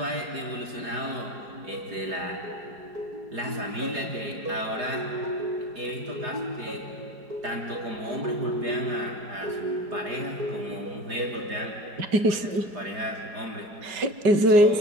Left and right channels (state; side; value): late; left; 4.9 ms